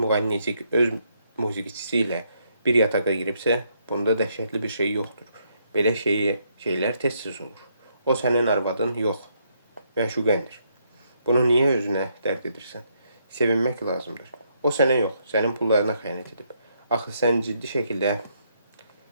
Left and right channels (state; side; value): inverted; both; correlation -0.74